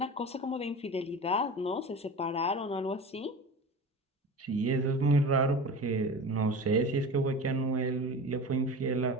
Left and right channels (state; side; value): normal; both; correlation 0.33